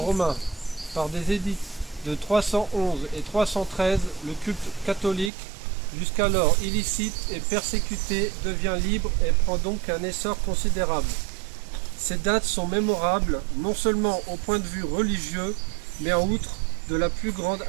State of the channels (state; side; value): drops out; left; at 5.3 s